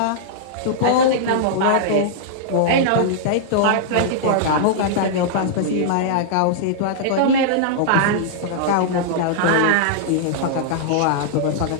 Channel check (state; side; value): different; both; correlation -0.01